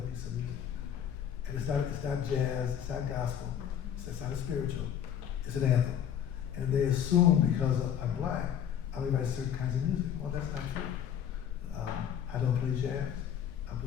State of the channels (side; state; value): right; quieter; 9.2 dB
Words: piece of music. And it's not jazz, it's not gospel, it's not a spiritual, it's an anthem. And they assume because I'm black, I only write certain kinds of music. Well, that's not true. I don't play jazz. I